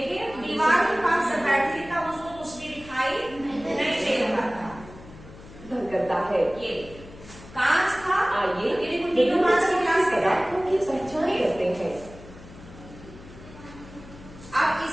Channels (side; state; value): left; noise; hum, 18 dB below the sound